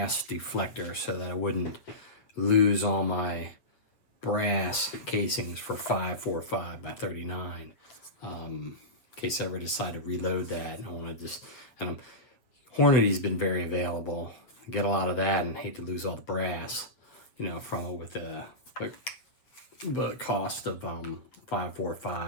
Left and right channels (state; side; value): late; right; 7.9 ms